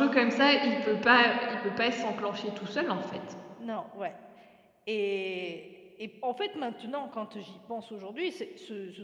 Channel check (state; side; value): identical; both; correlation 1.00